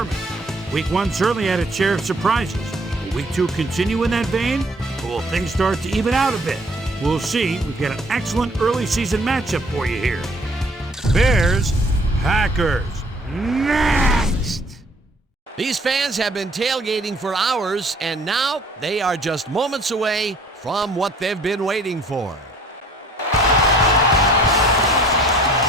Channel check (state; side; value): normal; both; correlation 0.57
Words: Week 1 certainly had its share of surprises. Will Week 2 continue in that vein, or will things start to even out a bit? We'll see. We've got an excellent early season matchup for you here. Bears, Packers, next! These fans have been tailgating for hours, and now they are just moments away from what they've been waiting for.